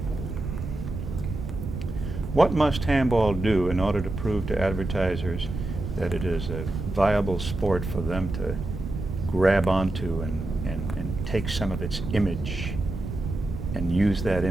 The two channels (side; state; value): right; noise; rumble, 6 dB below the sound